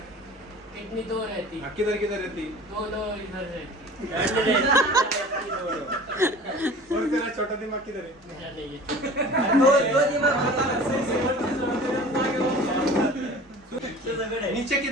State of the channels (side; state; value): both; normal; correlation 0.42